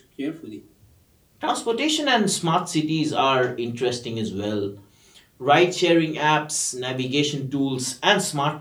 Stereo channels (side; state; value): both; identical; correlation 1.00